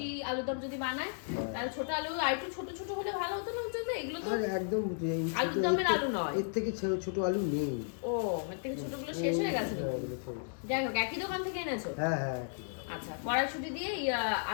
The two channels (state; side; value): silent; right; digital silence